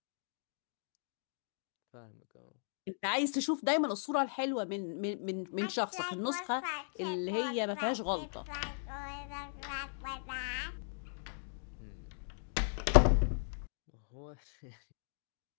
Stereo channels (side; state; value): right; silent; digital silence